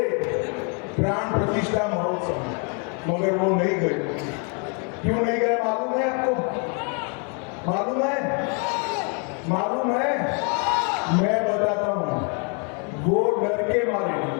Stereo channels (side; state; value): right; quieter; 37.6 dB